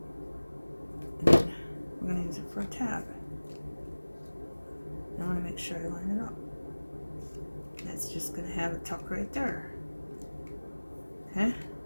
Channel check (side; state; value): both; inverted; correlation -1.00